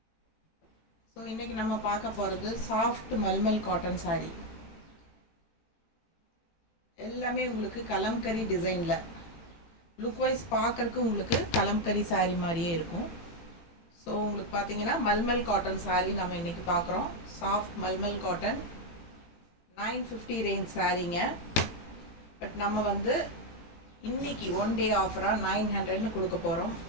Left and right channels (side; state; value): right; late; 18 ms